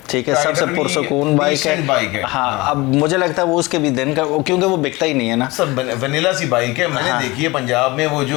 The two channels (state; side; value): quieter; right; 22.3 dB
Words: ठीक है, सबसे पुरसकून बाइक है। हाँ, अब मुझे लगता है वो उसके भी दिन का, क्योंकि वो बिकता ही नहीं है ना, सब वनीला सी बाइक है। मैंने देखी है पंजाब में, वो